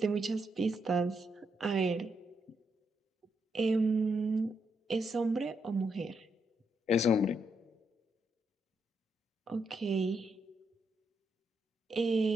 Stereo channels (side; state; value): both; normal; correlation 0.80